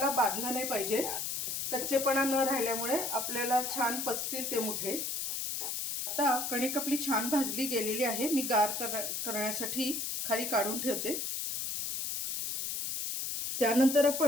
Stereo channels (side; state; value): left; noise; hiss, 2 dB below the sound